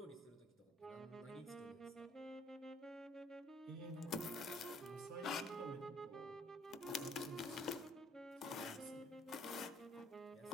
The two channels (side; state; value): both; normal; correlation 0.61